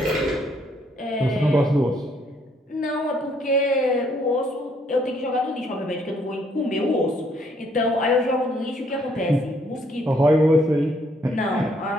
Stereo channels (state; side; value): normal; both; correlation 0.68